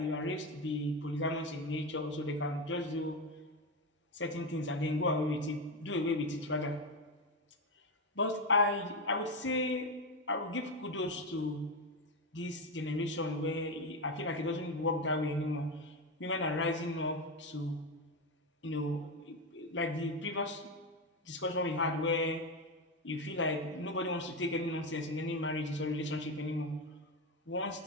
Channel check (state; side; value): normal; both; correlation 0.13